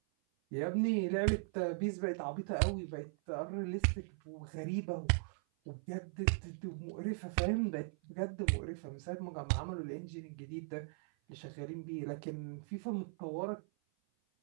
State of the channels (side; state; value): left; silent; 52 dB below the other